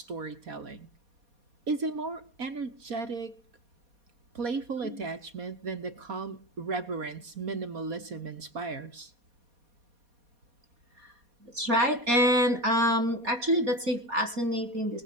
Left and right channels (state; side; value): late; left; 4.2 ms